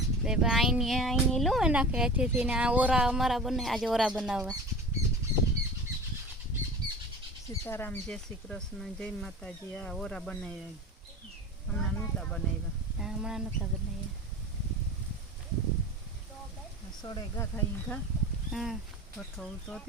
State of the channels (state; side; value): normal; both; correlation 0.36